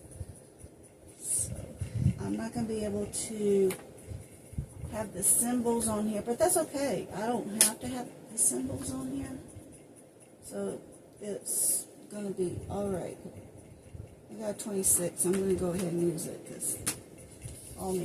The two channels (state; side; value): identical; both; correlation 1.00